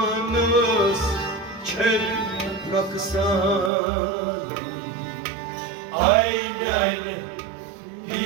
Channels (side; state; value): left; drops out; at 3.7 s